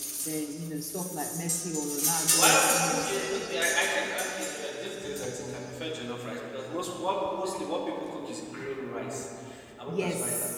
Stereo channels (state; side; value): identical; both; correlation 1.00